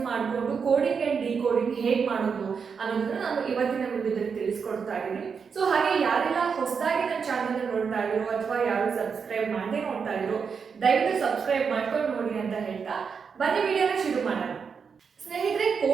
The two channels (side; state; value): left; quieter; 6.0 dB